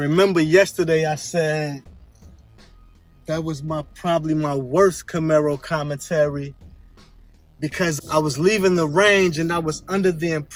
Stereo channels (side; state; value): both; identical; correlation 1.00